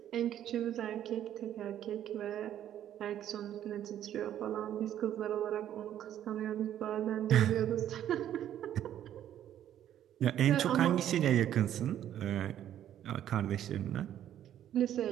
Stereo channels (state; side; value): quieter; left; 11.1 dB